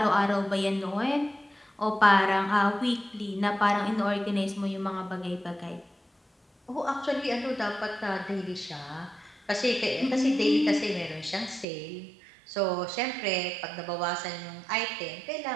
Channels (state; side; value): drops out; left; at 11.7 s